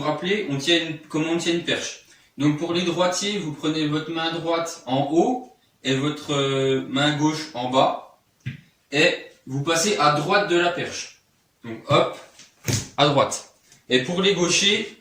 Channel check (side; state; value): both; identical; correlation 1.00